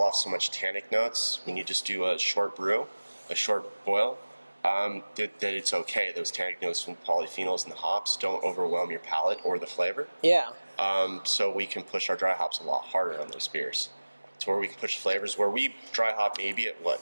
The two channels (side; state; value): both; inverted; correlation -1.00